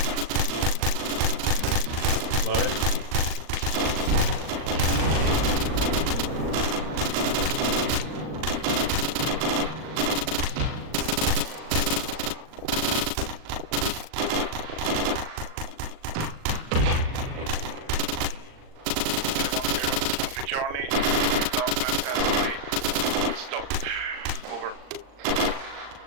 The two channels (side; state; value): left; late; 39 ms